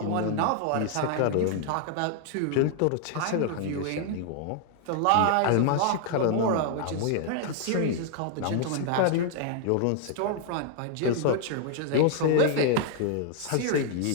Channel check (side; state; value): both; different; correlation 0.00